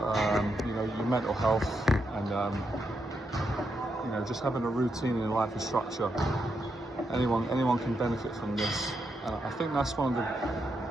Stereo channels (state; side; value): normal; both; correlation 0.82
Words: mental health, and just having a routine in life and structure. Anyone can benefit from this. I think that's